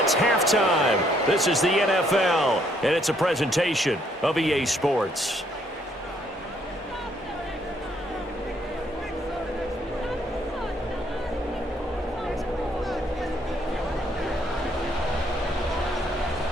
It's halftime. This is the NFL, and it's a presentation of EA Sports.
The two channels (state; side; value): normal; both; correlation 0.68